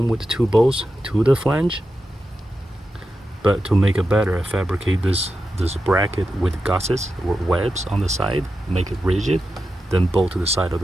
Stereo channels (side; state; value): both; normal; correlation 0.90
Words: with 2 bolts to the flange, but to make it better, I fabricate this bracket with gussets or webs on the side, make it rigid, then bolt to the side of